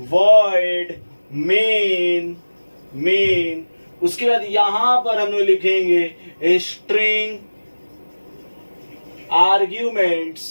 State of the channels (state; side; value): inverted; both; correlation -1.00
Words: वॉइड मेन। उसके बाद यहां पर हम लोग लिखेंगे स्ट्रिंग